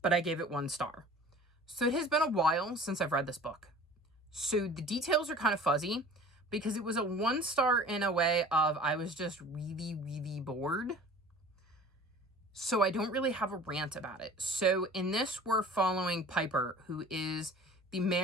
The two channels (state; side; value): normal; both; correlation 0.44